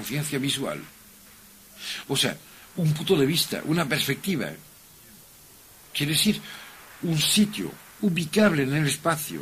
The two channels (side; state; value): both; identical; correlation 1.00